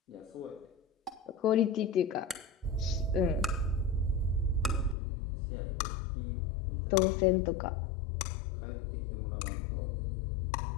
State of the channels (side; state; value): right; drops out; at 5.0 s